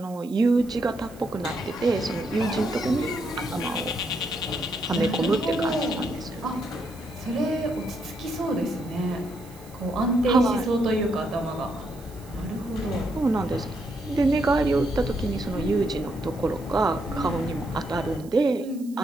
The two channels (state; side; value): noise; right; hiss, 23 dB below the sound